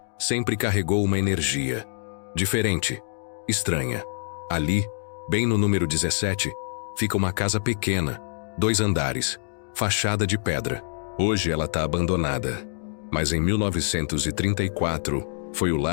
sempre carregou uma energia diferente, estranha. Ali, bem no número 17, fica uma casa pequena, 2 andares, fachada de pedra. Hoje ela está abandonada. Mas em 1934, foi o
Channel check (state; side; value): silent; right; digital silence